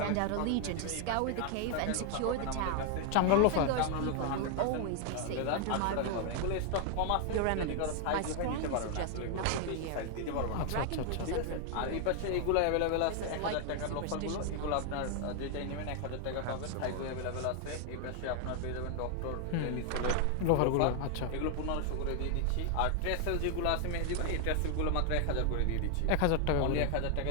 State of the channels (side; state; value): both; different; correlation 0.00